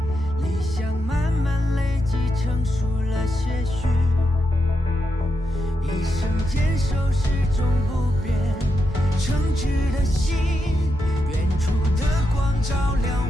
理想慢慢累积，成熟了些许。一生坚守始终不变，诚挚的心，远处的光照亮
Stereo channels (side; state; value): both; normal; correlation 0.85